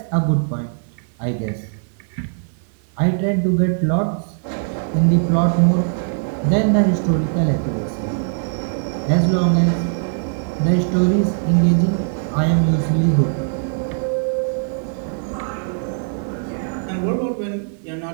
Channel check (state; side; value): silent; left; 57 dB below the other